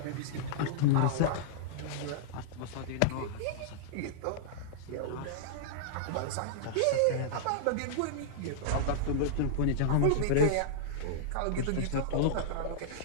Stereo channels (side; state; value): both; different; correlation -0.02